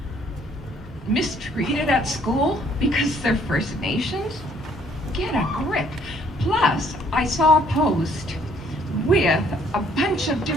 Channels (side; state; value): both; normal; correlation 0.63